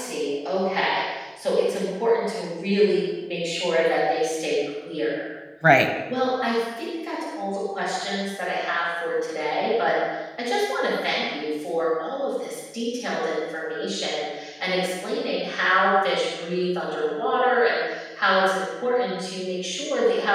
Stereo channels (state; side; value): identical; both; correlation 1.00